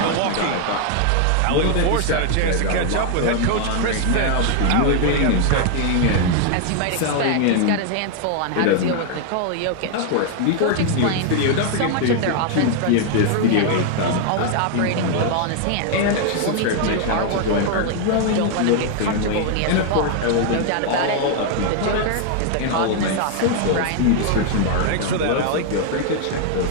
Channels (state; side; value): different; both; correlation 0.00